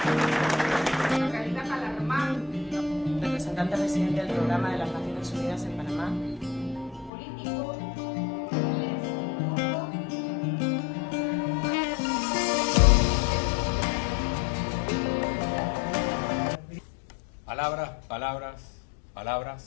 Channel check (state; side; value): drops out; right; at 7.1 s